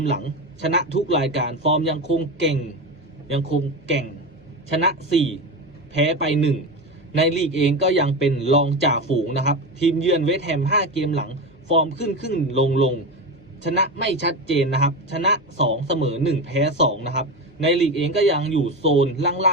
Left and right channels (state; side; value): normal; both; correlation 0.20